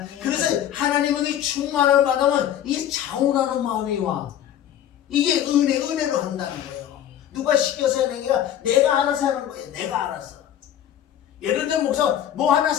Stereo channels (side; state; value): right; quieter; 10.8 dB